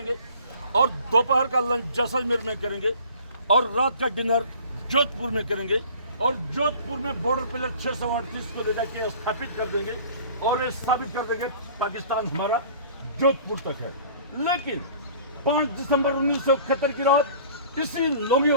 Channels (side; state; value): both; inverted; correlation -0.48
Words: और दोपहर का लंच जैसलमेर में करेंगे और रात का डिनर जोधपुर में करेंगे और जोधपुर में बॉर्डर पिलर 638 को ले जाके स्थापित कर देंगे और ये साबित कर देंगे पाकिस्तान हमारा जोधपुर तक है। लेकिन 5 दिसंबर 1971 की रात इसी